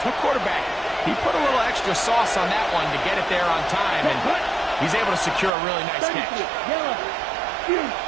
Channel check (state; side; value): drops out; left; at 5.5 s